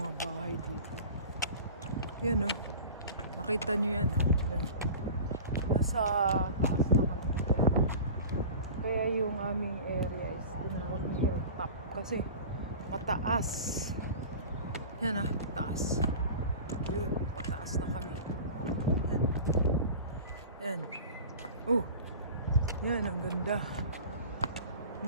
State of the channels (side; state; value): both; inverted; correlation -0.37